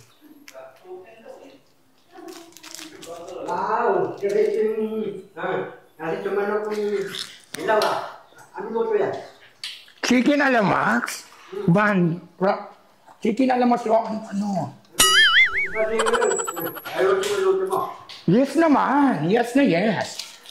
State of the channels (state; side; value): identical; both; correlation 1.00